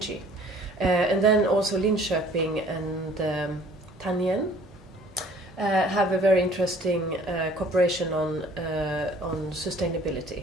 And then also Linköping and Tan have a very interesting cooperation on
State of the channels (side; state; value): both; normal; correlation 0.53